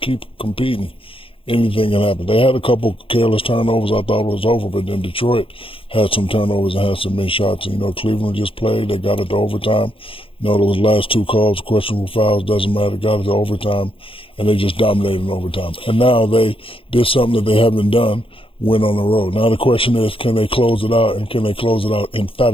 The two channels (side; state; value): right; late; 0.26 ms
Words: competing, anything can happen. They had a couple careless turnovers. I thought it was over, but then Detroit had some turnovers and had some missed shots. And, you know, Cleveland just played. They got it to overtime. You know, those last 2 calls, questionable fouls, doesn't matter. Got it to overtime, and they just dominated in overtime. And now they did something that they haven't done, went on the road. Now the question is, can they close it out, and can they close it out